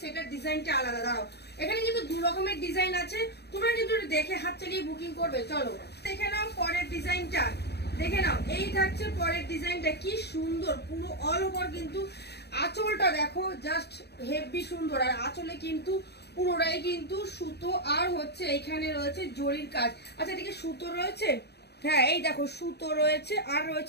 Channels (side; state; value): right; late; 0.48 ms